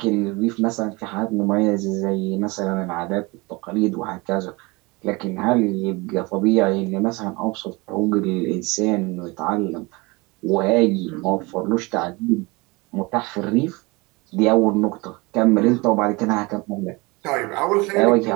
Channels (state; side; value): quieter; left; 25.1 dB